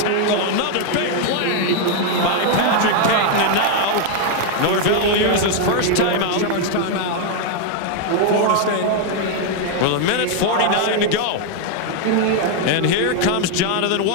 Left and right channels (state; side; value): different; both; correlation 0.00